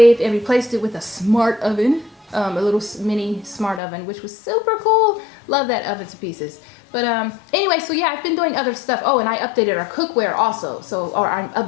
and replaced it with a smart oven, a little mini smart oven, which was super cool. Love that oven to pieces. But anyway, so yeah, I've been doing other stuff. Oh, and I updated our cookware also. Or I'm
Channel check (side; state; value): right; drops out; at 3.8 s